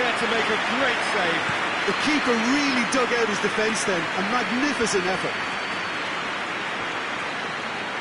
to make a great save. The keeper really dug out his defence then. A magnificent effort.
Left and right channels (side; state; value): both; identical; correlation 1.00